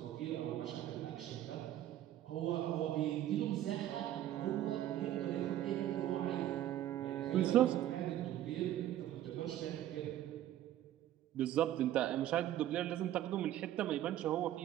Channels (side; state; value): left; quieter; 12.7 dB